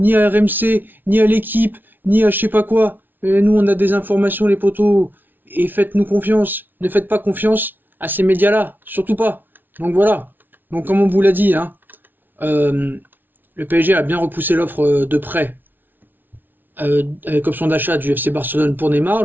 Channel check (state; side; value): late; left; 0.090 ms